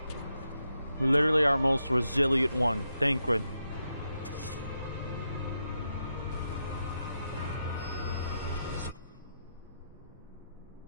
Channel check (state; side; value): inverted; both; correlation -0.84